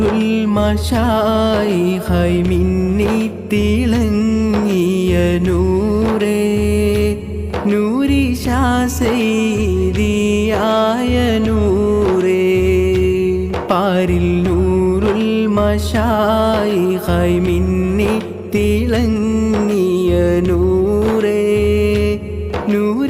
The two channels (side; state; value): both; identical; correlation 1.00